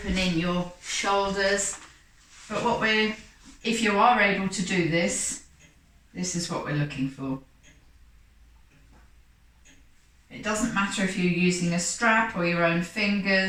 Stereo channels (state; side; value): identical; both; correlation 1.00